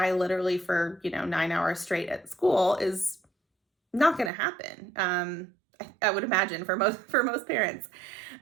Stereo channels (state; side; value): drops out; left; at 4.3 s